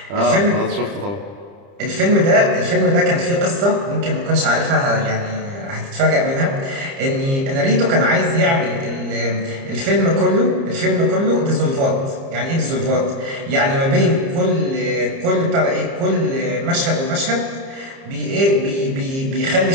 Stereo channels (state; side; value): late; left; 30 ms